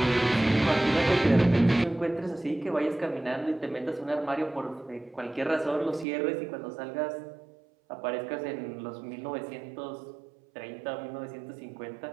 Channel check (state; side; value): drops out; left; at 6.1 s